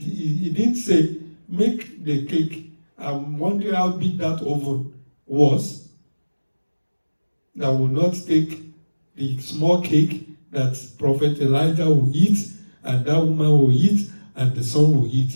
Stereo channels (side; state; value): both; inverted; correlation -1.00